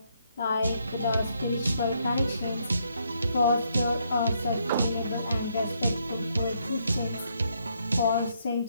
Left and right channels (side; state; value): both; inverted; correlation -0.73